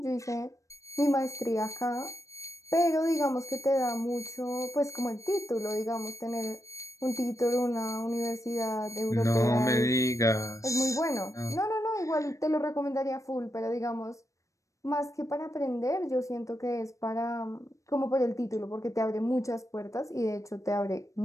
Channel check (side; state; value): right; late; 0.15 ms